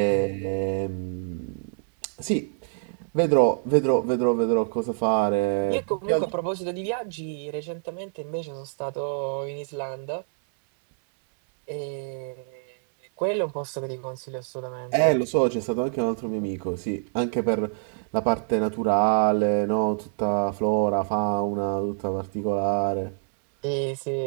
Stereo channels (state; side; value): silent; left; 61 dB below the other